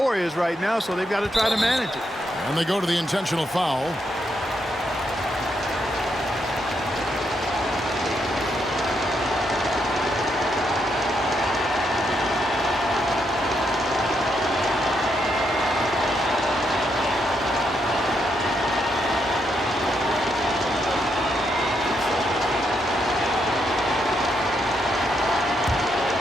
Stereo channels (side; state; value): both; normal; correlation 0.79